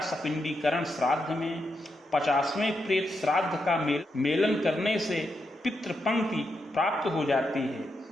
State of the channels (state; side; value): normal; both; correlation 0.84